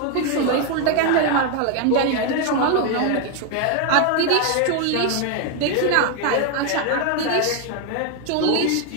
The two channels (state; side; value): different; both; correlation 0.01